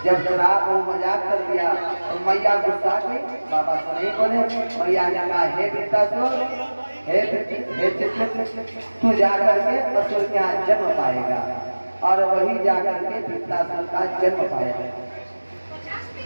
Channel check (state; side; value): inverted; both; correlation -1.00